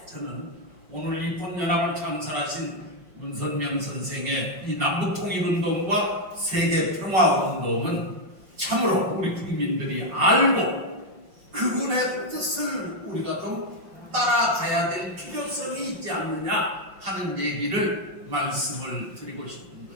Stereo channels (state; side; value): late; left; 5.4 ms